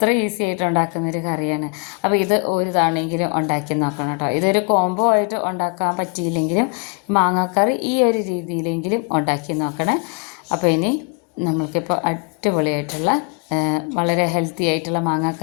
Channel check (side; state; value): right; quieter; 33.7 dB